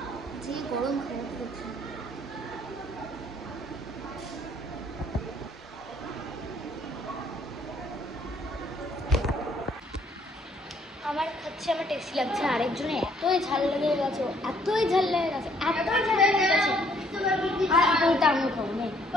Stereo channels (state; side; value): normal; both; correlation 0.65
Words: যে গরম খারাপ করছে। আমার হচ্ছে আমার টেস্টি লাগছে, আরেকজনে এতই ঝাল লেগে গেছে, এতই ঝাল লেগে গেছে, এতই ঝাল লেগে গেছে। আর বলতে আমিও খাবো নেই,